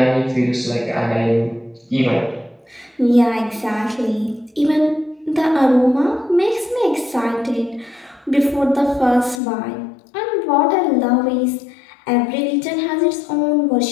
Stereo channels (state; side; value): drops out; right; at 9.4 s